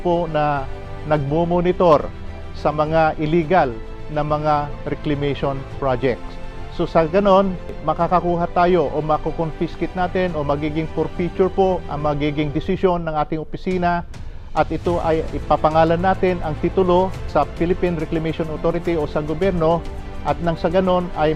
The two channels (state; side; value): identical; both; correlation 1.00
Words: na nagmo-monitor sa mga illegal na mga reclamation projects. So sa ganon, makakakuha tayo o makukonfiscate natin o magiging forfeiture po ang magiging desisyon ng ating opisina at ito ay ipapangalan natin ang titulo sa Philippine Reclamation Authority o sa gobyerno at nang sa ganon